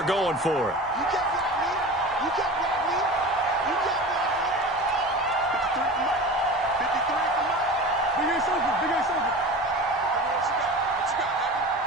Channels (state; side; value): normal; both; correlation 0.33